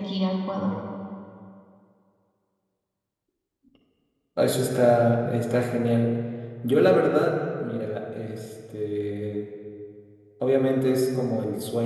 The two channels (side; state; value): both; identical; correlation 1.00